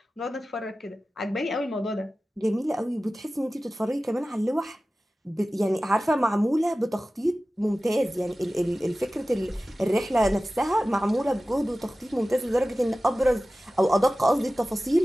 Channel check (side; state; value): both; normal; correlation 0.96